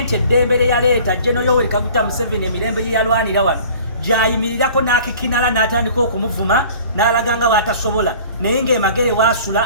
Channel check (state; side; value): inverted; both; correlation -0.47